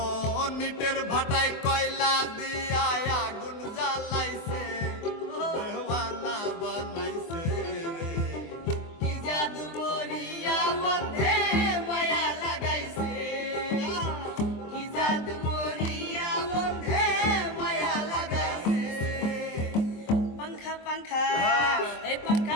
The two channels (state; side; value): late; right; 23 ms